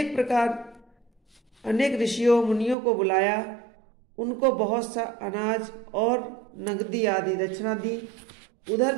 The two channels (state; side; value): drops out; left; at 2.8 s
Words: अनेक ऋषियों मुनियों को बुलाया। उनको बहुत सा अनाज और नगदी आदि दक्षिणा दी। उधर